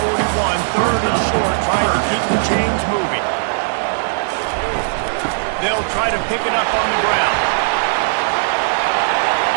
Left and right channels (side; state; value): left; silent; digital silence